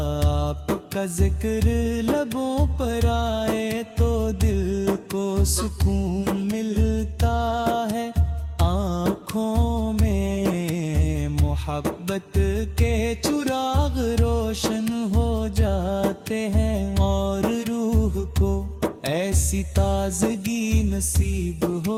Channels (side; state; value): both; identical; correlation 1.00